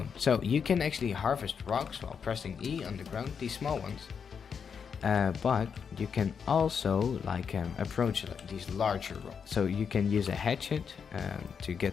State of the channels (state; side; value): quieter; right; 6.6 dB